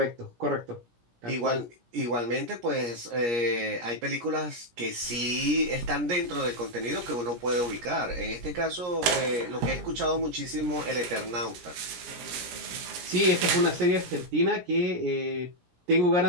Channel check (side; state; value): left; late; 17 ms